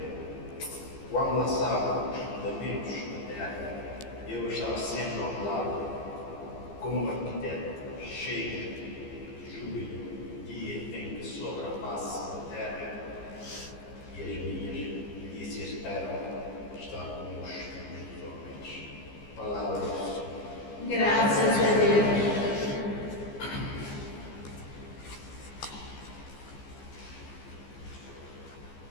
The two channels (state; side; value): late; right; 15 ms